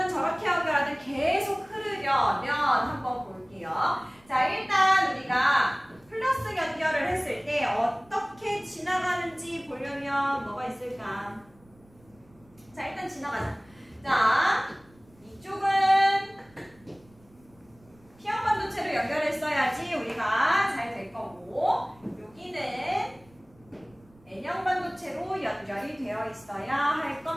저렇게 연결하든 계속 흐르려면 한번 볼게요. 자, 일단 우리가 플러스 연결을 했을 때 어떻게 지나가는지 보려면 뭐가 있을까? 자, 일단 지나가자. 자, 이쪽은 P형 반도체로 연결했어야지 우리가 잘 될 거고, 여기는 N형 반도체로 연결이 되어 있어야 할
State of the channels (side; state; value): right; noise; rumble, 29 dB below the sound